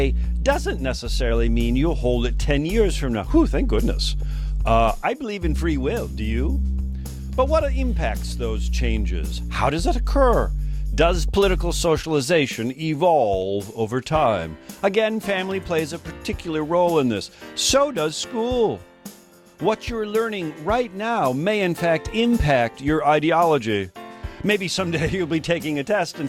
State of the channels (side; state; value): both; identical; correlation 1.00